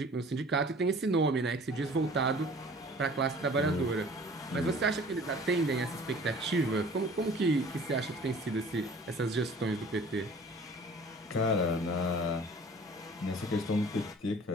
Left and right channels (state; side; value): normal; both; correlation 0.48